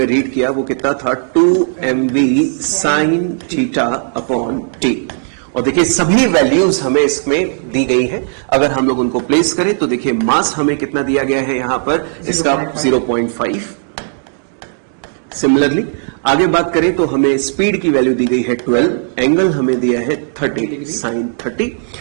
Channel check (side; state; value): left; silent; digital silence